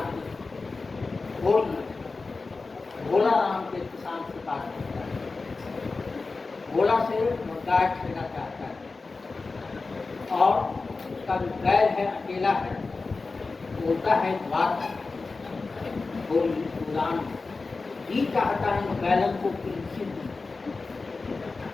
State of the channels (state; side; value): quieter; right; 3.9 dB